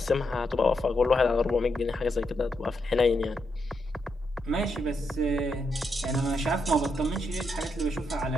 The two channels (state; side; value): normal; both; correlation 0.82